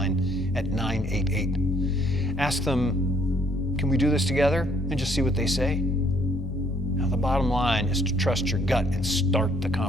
at 988. Ask them, "Can we do this together?" and just see what they say. Now, the bottom line is to trust your gut and start the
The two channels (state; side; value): normal; both; correlation 0.65